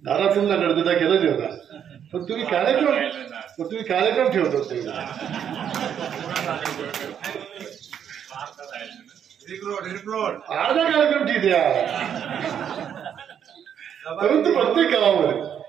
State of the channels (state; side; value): quieter; left; 8.7 dB